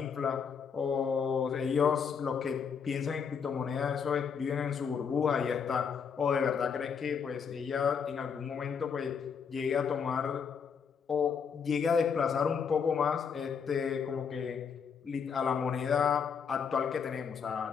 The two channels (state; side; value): quieter; right; 6.6 dB